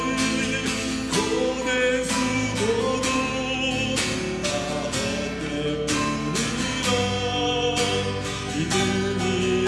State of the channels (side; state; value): both; identical; correlation 1.00